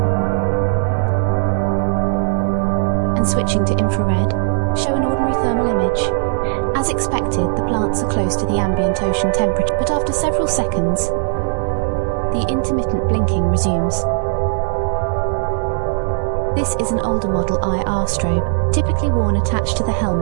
and switching to infrared, show an ordinary thermal image. As expected, the plants are close to the ambient ocean temperature, but after several seconds, the intermittent blinking resumes. This is an older model IR strobe, typically worn attached to the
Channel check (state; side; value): silent; left; 67 dB below the other